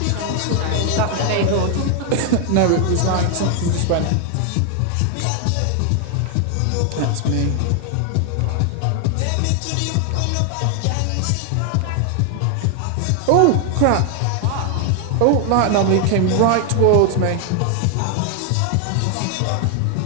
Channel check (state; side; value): different; both; correlation 0.00